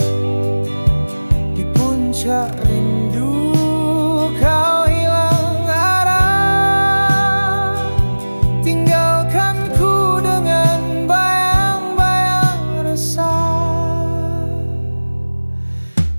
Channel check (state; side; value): inverted; both; correlation -1.00